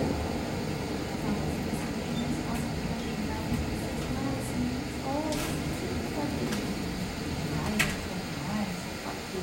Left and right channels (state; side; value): identical; both; correlation 1.00